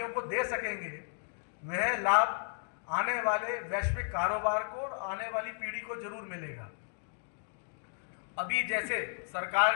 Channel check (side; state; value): right; silent; digital silence